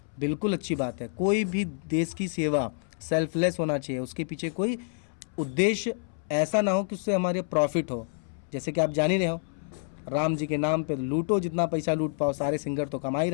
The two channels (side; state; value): right; silent; 59 dB below the other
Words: बिल्कुल अच्छी बात है। कोई भी देश की सेवा सेल्फलेस होना चाहिए, उसके पीछे कोई उद्देश्य ऐसा ना हो कि उससे हमारे प्रॉफिट हो। जैसे कि आप जान ही रहे हो, राम जी के नाम पे लूटो जितना पैसा लूट पाओ, सारे सिंगर तो कमा ही